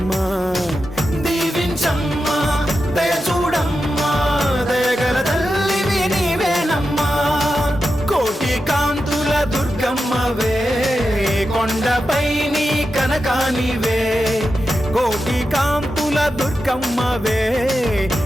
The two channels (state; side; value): normal; both; correlation 0.90